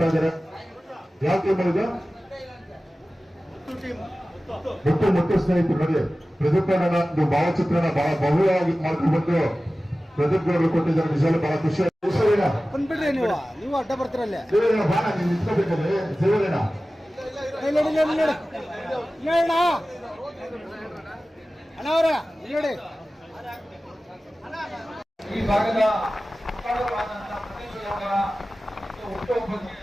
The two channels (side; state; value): both; normal; correlation 0.96